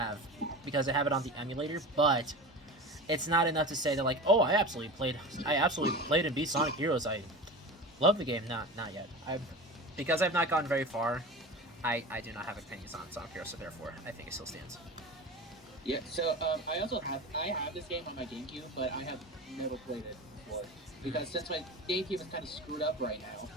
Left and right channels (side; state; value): both; normal; correlation 0.31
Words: it on the emulator, but it's not enough to say that like, oh, I absolutely played and beat Sonic Heroes. I love the game. Not yet. Because I've not gotten very far. I do not have opinions on Sonic Heroes, so therefore I think it still stands. Yeah. So I have this game on my GameCube, but I have never played it before because since my GameCube is kind of screwed up right now,